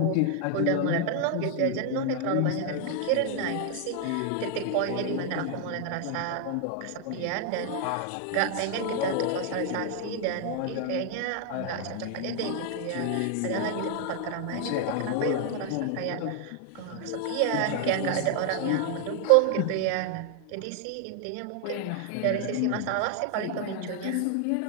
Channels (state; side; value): different; both; correlation 0.00